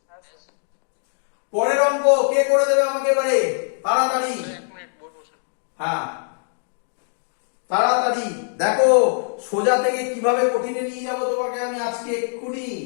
পরের অঙ্ক কে করে দেবে আমাকে এবারে, তাড়াতাড়ি। 1 মিনিট বলবো স্যার। হ্যাঁ তাড়াতাড়ি দেখো, সোজা থেকে কিভাবে কঠিনে নিয়ে যাব তোমাকে আমি আজকে এক্ষুনি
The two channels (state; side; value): silent; right; digital silence